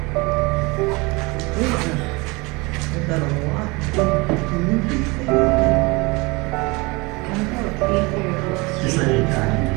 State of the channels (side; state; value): left; quieter; 25.8 dB